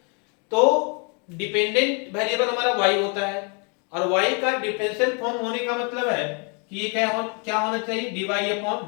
तो डिपेंडेंट वेरिएबल हमारा y होता है और y का डिफरेंशियल फॉर्म होने का मतलब है कि ये क्या होना चाहिए, dy अपॉन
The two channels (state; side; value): quieter; right; 36.0 dB